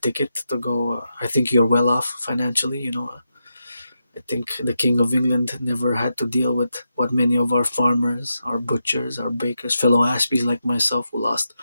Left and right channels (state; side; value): inverted; both; correlation -0.86